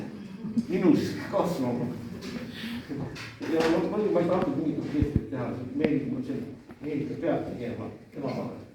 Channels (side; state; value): both; identical; correlation 1.00